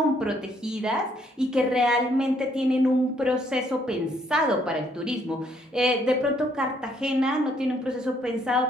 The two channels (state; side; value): normal; both; correlation 0.68